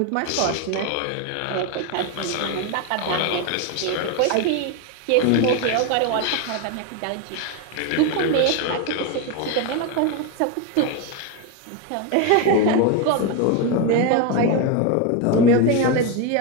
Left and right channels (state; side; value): different; both; correlation 0.02